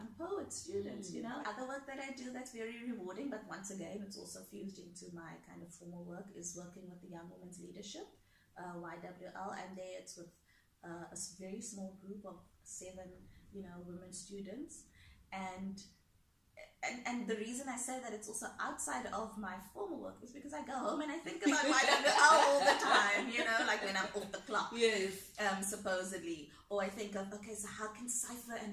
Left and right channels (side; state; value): both; identical; correlation 1.00